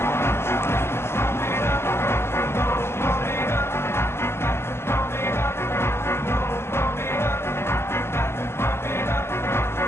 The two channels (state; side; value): late; right; 0.12 ms